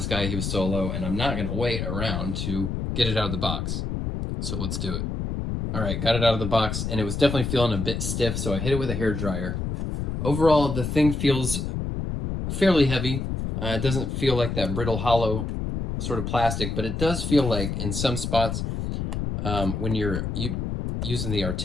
guy, he was solo, and I'm not going to wait around to get it out of the box. So let's do it. All right, got it out of the box, and it was definitely feeling a bit stiff, so I hit it with a hairdryer. Overall, the thing feels fairly heavy. It doesn't feel like that brittle, hollow sort of plastic, but it does feel like in some spots, when you're using the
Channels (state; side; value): noise; left; rumble, 3 dB below the sound